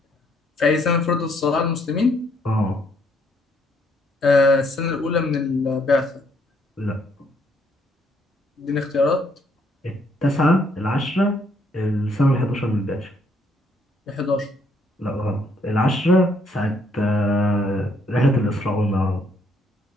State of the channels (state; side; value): normal; both; correlation 0.69